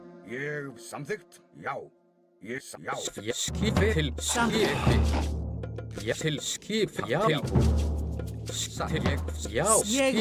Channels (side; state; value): both; identical; correlation 1.00